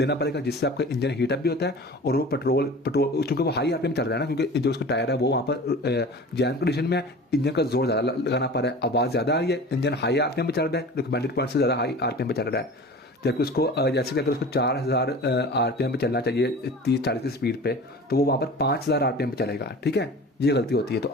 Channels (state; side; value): normal; both; correlation 0.39